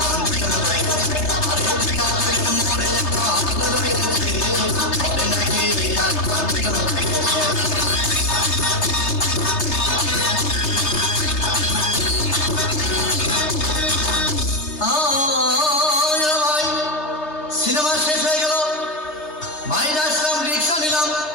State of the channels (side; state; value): right; late; 3.3 ms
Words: ভাই সিনেমা শেষ হয়ে গেল। বাইরে আসলাম, রিক্সা নিলাম।